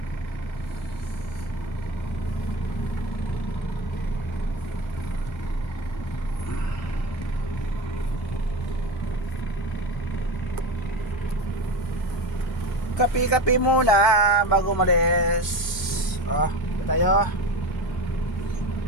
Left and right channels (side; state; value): both; normal; correlation 0.25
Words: Kape-kape muna bago umalis. Kape tayo.